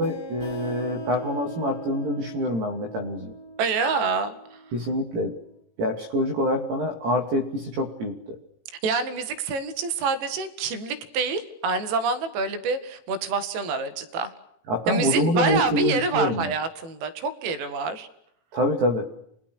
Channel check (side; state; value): left; late; 18 ms